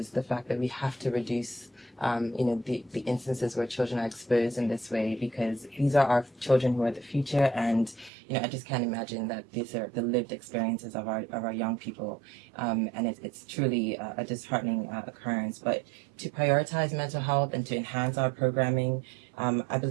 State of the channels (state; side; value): drops out; left; at 8.1 s